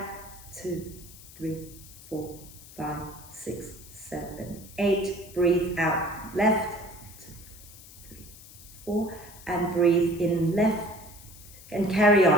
2, 3, 4, 5, 6, 7, 8. Breathe out left. 2, 3, 4. And breathe in left. And carry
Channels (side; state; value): left; noise; hiss, 19 dB below the sound